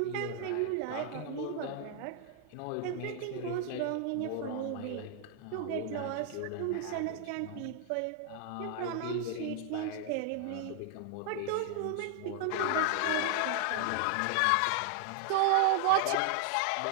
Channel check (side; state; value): both; different; correlation 0.00